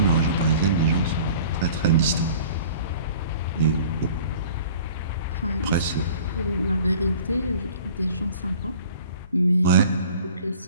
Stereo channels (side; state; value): both; inverted; correlation -0.47